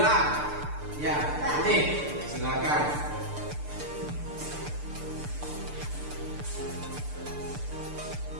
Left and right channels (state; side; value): late; left; 6.8 ms